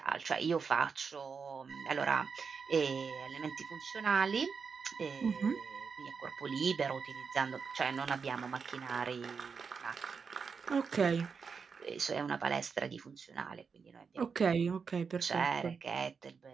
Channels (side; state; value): left; quieter; 5.6 dB